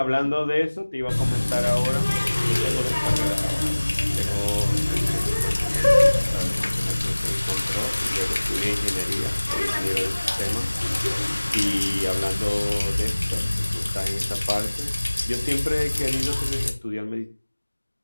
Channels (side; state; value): both; inverted; correlation -1.00